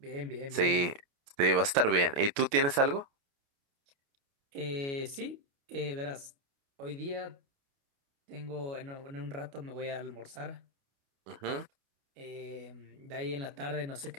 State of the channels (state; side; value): late; left; 29 ms